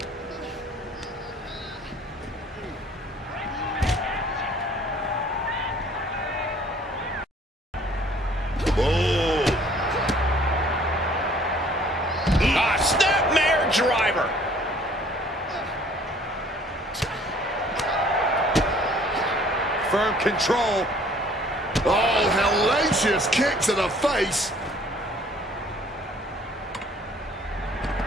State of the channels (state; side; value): normal; both; correlation 0.56